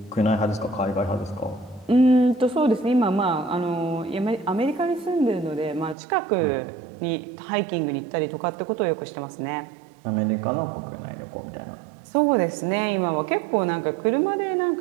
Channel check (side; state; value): left; drops out; at 6.0 s